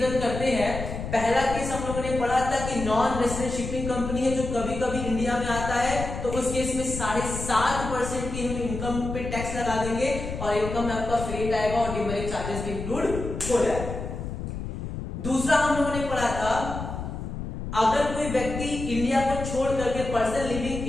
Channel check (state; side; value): noise; left; rumble, 7 dB below the sound